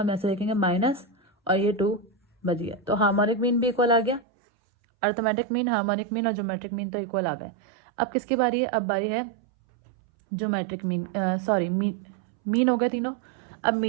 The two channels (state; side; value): drops out; left; at 4.2 s